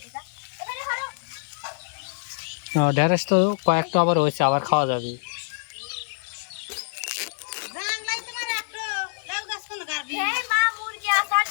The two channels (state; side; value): silent; right; digital silence